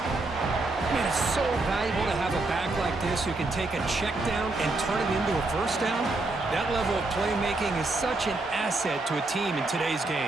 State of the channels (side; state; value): left; quieter; 3.1 dB